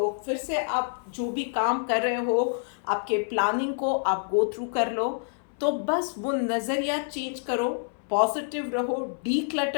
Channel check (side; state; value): right; silent; 60 dB below the other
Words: फिर से आप जो भी काम कर रहे हो आपके प्लानिंग को आप गो थ्रू कर लो। तो बस वो नज़रिया चेंज करो, पॉजिटिव रहो,